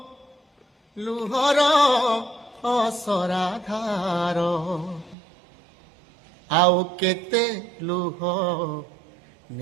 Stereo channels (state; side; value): drops out; left; at 5.2 s